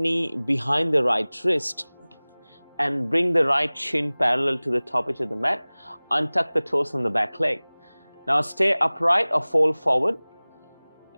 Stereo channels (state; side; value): inverted; both; correlation -1.00